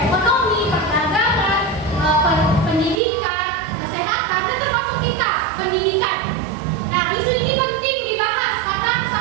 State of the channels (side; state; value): left; drops out; at 3.0 s